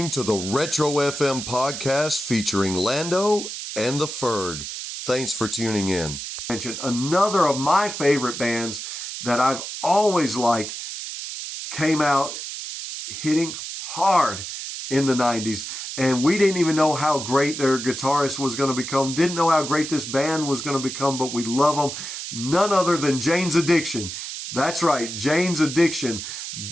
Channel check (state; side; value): noise; right; hiss, 7 dB below the sound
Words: to the Retro FM podcast featuring Lando and the Ferg. Thanks for tuning in. Another of my favorite bands that I've always liked came out hitting hard in the 90s. And we didn't even know how great their guitarist was going to become. Didn't know how great this band was going to become, but we love them. None other than Jane's Addiction. That's right, Jane's Addiction.